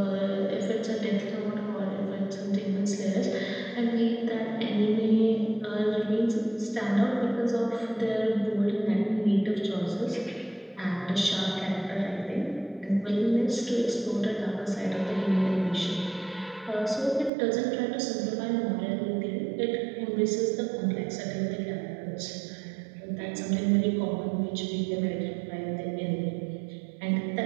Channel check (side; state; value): left; drops out; at 17.3 s